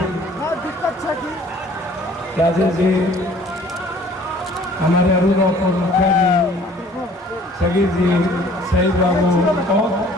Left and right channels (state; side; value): normal; both; correlation 0.54